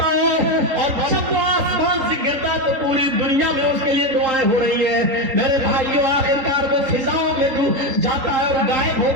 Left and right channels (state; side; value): late; left; 3.8 ms